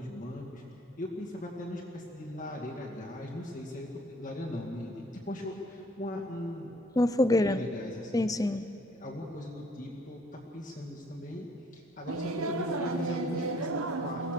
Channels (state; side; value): normal; both; correlation 0.60